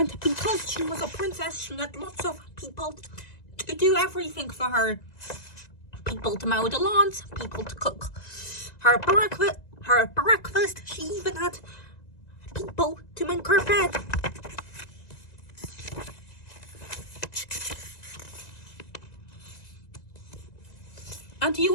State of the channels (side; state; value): right; late; 1.9 ms